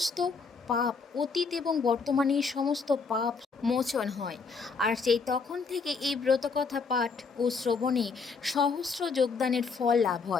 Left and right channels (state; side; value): quieter; right; 4.9 dB